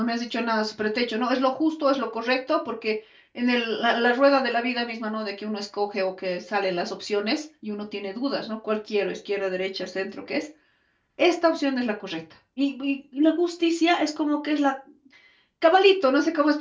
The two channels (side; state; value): both; identical; correlation 1.00